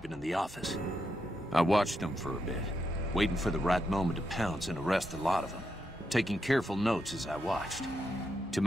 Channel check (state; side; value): normal; both; correlation 0.83